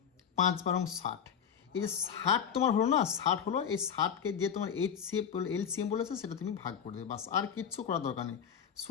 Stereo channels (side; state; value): right; quieter; 7.9 dB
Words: 5 12 60। এই যে 60 তোমার হলো না, 60 হলো, এই 60কে যে তোমার HCF এলসিএম বলেছে সেটা তুমি ভাগ করে দেবে, বাস আর কিচ্ছু করার দরকার নেই।